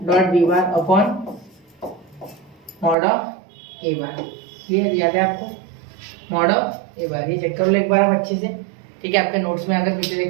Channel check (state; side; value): drops out; left; at 3.0 s